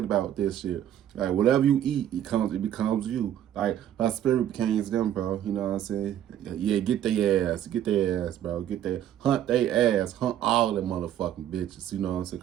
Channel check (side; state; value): left; quieter; 11.0 dB